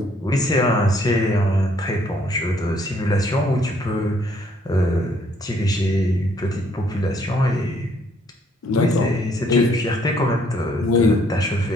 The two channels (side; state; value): both; normal; correlation 0.66